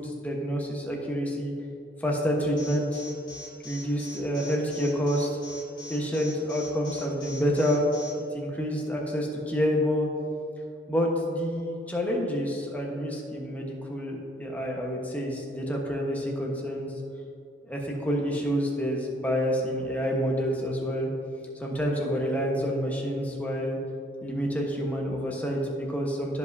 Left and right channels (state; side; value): normal; both; correlation 0.63